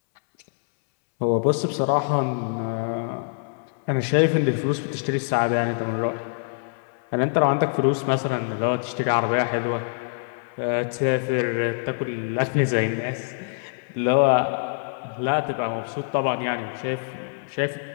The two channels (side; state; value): right; silent; 62 dB below the other